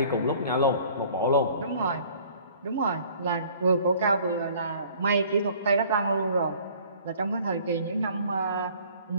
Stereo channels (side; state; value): both; inverted; correlation -0.53